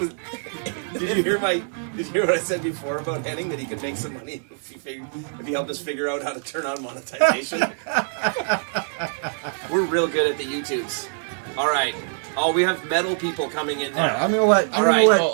did you hear what I said before about Henning, that he could make some money if he helped us figure out how to turn on monetization? We're real good at the YouTubes. All right. Oh, we have metal people coming in now. All right, I'm gonna let. All right.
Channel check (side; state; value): left; silent; digital silence